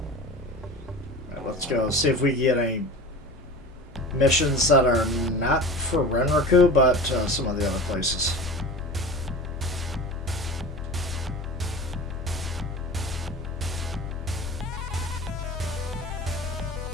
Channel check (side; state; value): both; normal; correlation 0.35